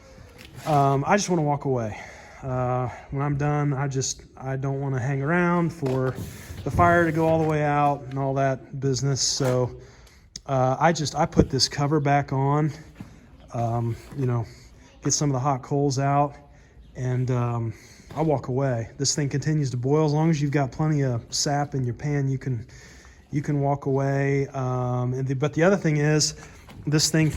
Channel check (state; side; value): identical; both; correlation 1.00